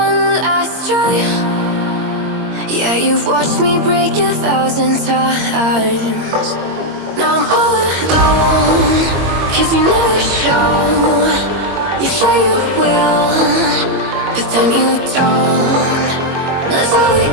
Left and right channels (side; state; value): left; late; 22 ms